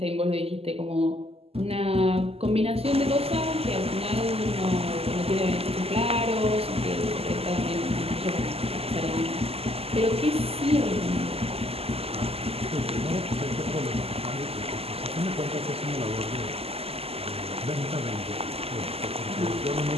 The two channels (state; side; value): late; left; 0.29 ms